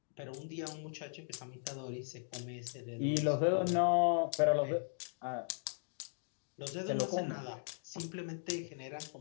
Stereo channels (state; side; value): silent; right; digital silence